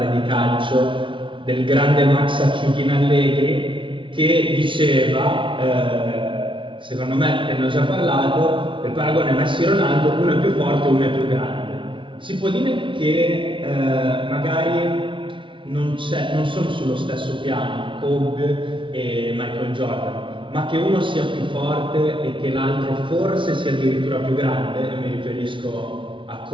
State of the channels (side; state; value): left; late; 0.24 ms